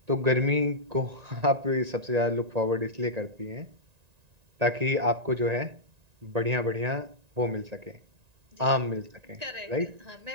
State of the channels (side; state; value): left; late; 1.9 ms